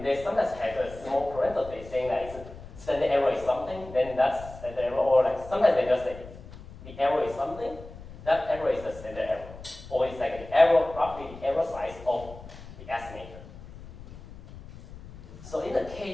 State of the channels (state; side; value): noise; left; rumble, 16 dB below the sound